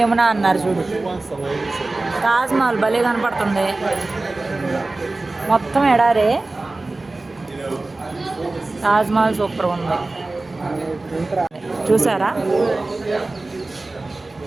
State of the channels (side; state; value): left; quieter; 3.1 dB